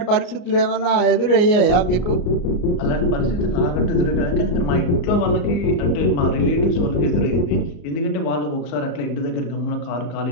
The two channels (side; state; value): right; late; 33 ms